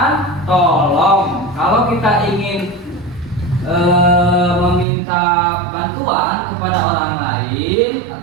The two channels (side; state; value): left; drops out; at 4.9 s